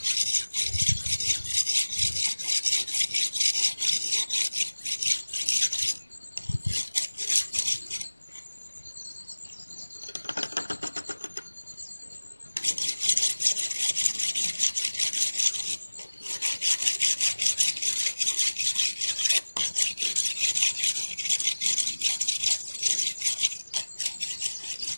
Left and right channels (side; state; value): both; inverted; correlation -1.00